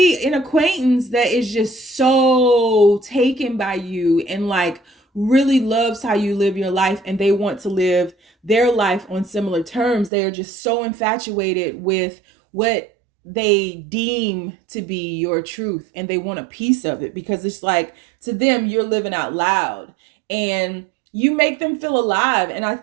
an acquaintance that is just so taken by you and like really loves how you live your life, and they want to live their life on similar terms. They are just so infatuated with what they deem to be your truth, and they want a piece of it because it's like, to them, you're living out loud and you make them feel alive. And I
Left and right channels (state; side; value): drops out; left; at 10.1 s